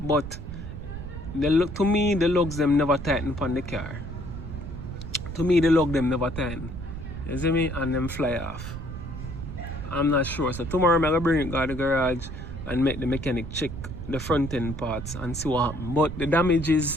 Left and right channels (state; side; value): noise; right; rumble, 9 dB below the sound